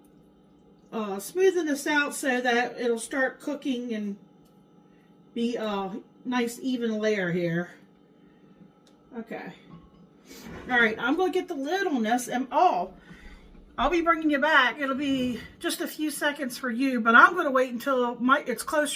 smoothing this out so that it'll start cooking and be a nice even layer here. Okay. Alright, I'm going to get the lid on this, and I'll be bringing you back. It'll be just a few seconds for you, but I'm going to wait until it's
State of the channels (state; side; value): identical; both; correlation 1.00